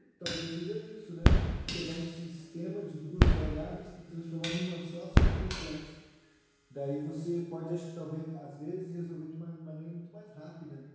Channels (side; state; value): both; identical; correlation 1.00